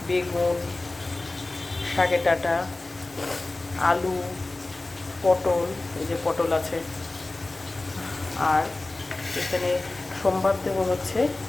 বেগুন, শাকের ডাঁটা, আলু, পটল, এই যে পটল আছে, আর এখানে সোমবার দেবো হচ্ছে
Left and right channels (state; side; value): quieter; right; 3.0 dB